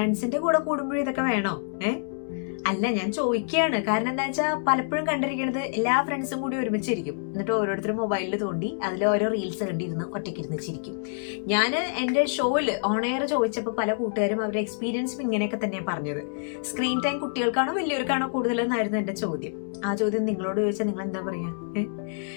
കൂടെ കൂടുമ്പോഴും ഇതൊക്കെ വേണോ? അല്ല, ഞാൻ ചോദിക്കുകയാണ്. കാരണം എന്താ വെച്ചാൽ പലപ്പോഴും കണ്ടിരിക്കുന്നത് എല്ലാ ഫ്രണ്ട്സും കൂടി ഒരുമിച്ചിരിക്കും, എന്നിട്ട് ഓരോരുത്തരും മൊബൈലിൽ തോണ്ടി അതിൽ ഓരോ റീൽസ് കണ്ടിരുന്ന് ഒറ്റയ്ക്കിരുന്ന് ചിരിക്കും. ഞാൻ എൻ്റെ ഷോയില് ഓൺ എയർ ചോദിച്ചപ്പോൾ പല കൂട്ടുകാരും അവരുടെ എക്സ്പീരിയൻസും ഇങ്ങനെയൊക്കെ തന്നെയാണ് പറഞ്ഞത്. സ്ക്രീൻ ടൈം കുട്ടികൾക്കാണോ വലിയവർക്കാണോ കൂടുതലെന്നായിരുന്നു എൻ്റെ ചോദ്യം. ആ ചോദ്യം നിങ്ങളോട് ചോദിച്ചാൽ നിങ്ങൾ എന്താ പറയാ?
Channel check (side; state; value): right; silent; digital silence